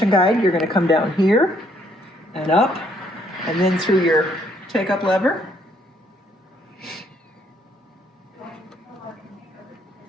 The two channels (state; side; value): normal; both; correlation 0.68